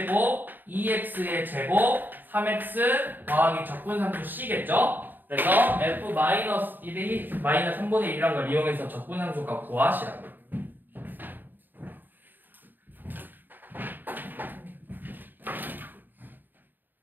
2x의 제곱 3x 더하기 적분상수 c겠죠? 그래서 f 마이너스 1이 마이너스 3분의 1이란 걸 이용해서 적분상수값 구하시라고.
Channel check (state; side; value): late; left; 0.091 ms